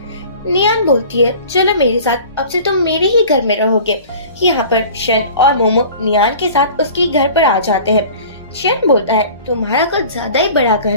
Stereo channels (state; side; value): inverted; both; correlation -0.43